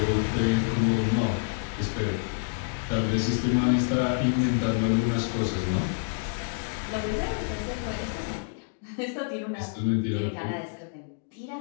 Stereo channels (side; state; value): right; silent; digital silence